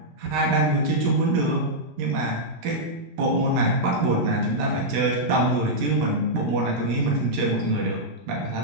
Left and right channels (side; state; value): left; late; 15 ms